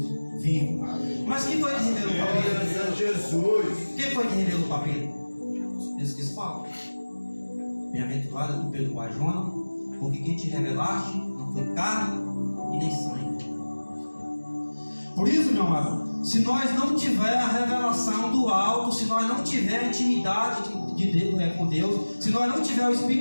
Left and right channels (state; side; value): inverted; both; correlation -1.00